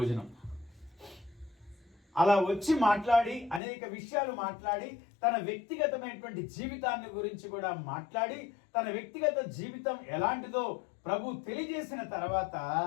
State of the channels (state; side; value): drops out; right; at 3.6 s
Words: అలా వచ్చి మాట్లాడి అనేక విషయాలు మాట్లాడి తన వ్యక్తిగతమైనటువంటి జీవితాన్ని గురించి కూడా మాట్లాడి తన వ్యక్తిగత జీవితం ఎలాంటిదో ప్రభు తెలియజేసిన తర్వాత